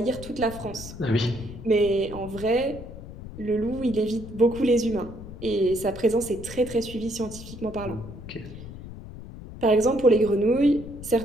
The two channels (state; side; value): noise; left; rumble, 13 dB below the sound